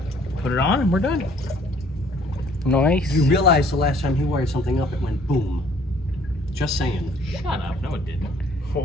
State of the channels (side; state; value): both; normal; correlation 0.59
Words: put it on, and we're done. Nice. You realize the last time he wired something up, it went boom. Just saying. Shut up. No, it didn't. What